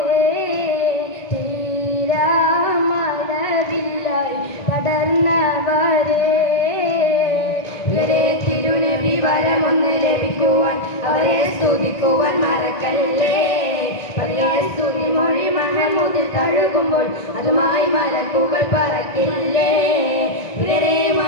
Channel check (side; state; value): right; late; 1.9 ms